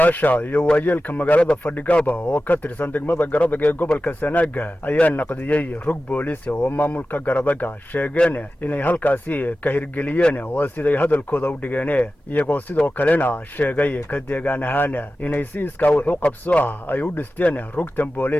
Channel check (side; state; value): both; normal; correlation 0.94